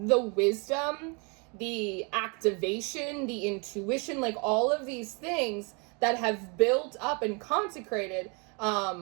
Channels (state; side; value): quieter; left; 33.0 dB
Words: wisdom, the activation, the intuition, like, all of these things that have built up and consecrated